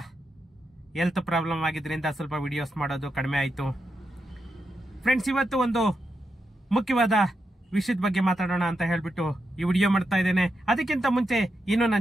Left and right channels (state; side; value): normal; both; correlation 0.86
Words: ಹೆಲ್ತ್ ಪ್ರಾಬ್ಲಮ್ ಆಗಿದ್ರಿಂದ ಸ್ವಲ್ಪ ವಿಡಿಯೋಸ್ ಮಾಡೋದು ಕಡಿಮೆ ಆಯಿತು. ಫ್ರೆಂಡ್ಸ್, ಇವತ್ತು ಒಂದು ಮುಖ್ಯವಾದ ವಿಷಯದ ಬಗ್ಗೆ ಮಾತಾಡೋಣ ಅಂತ ಹೇಳ್ಬಿಟ್ಟು ಈ ವಿಡಿಯೋ ಮಾಡ್ತಾ ಇದ್ದೇನೆ. ಅದಕ್ಕಿಂತ ಮುಂಚೆ ಇನ್ನು